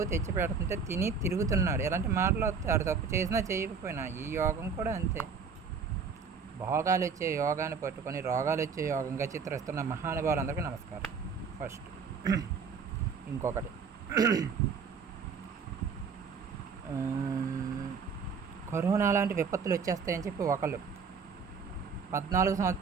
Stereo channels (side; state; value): left; quieter; 5.6 dB